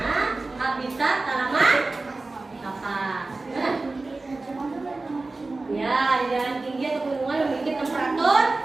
habitat tanaman kapas? Nah. Ya, di daerah tinggi atau pegunungan memiliki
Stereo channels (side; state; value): left; quieter; 3.4 dB